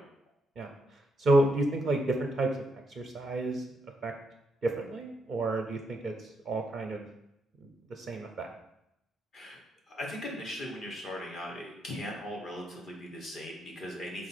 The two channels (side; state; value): both; normal; correlation 0.79